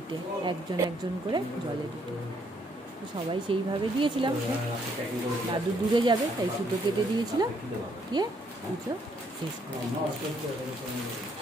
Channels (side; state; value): both; normal; correlation 0.70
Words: একজন একজন করে জলে দিতে। তো সবাই সেইভাবে দিয়েছিলাম। দাদু দূরে যাবে তাই সুতো কেটে দিয়েছিলাম, দিয়ে পুজো শেষ করে।